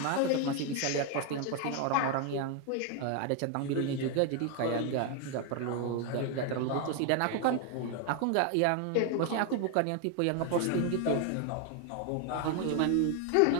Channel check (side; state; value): both; different; correlation 0.01